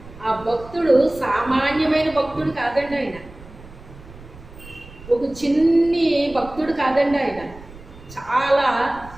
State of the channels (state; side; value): noise; right; rumble, 19 dB below the sound